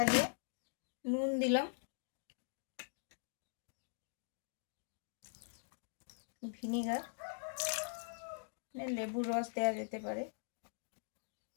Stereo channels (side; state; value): right; silent; digital silence